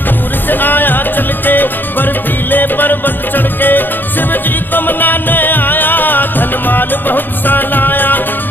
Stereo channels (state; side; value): late; right; 0.092 ms